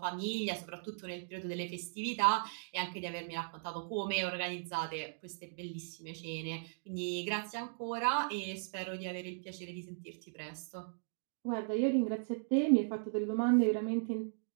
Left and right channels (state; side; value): silent; left; digital silence